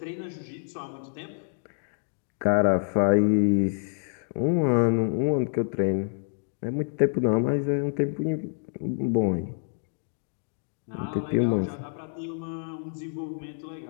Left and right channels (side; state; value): right; silent; digital silence